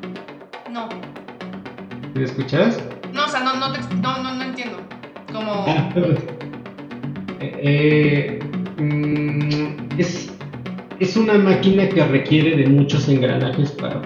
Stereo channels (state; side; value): identical; both; correlation 1.00